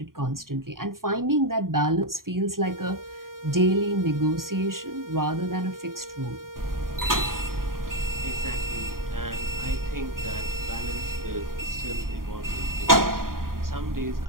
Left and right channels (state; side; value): late; left; 0.91 ms